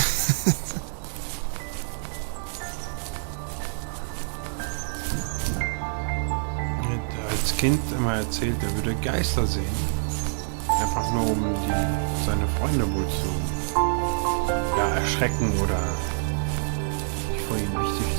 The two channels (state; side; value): silent; left; digital silence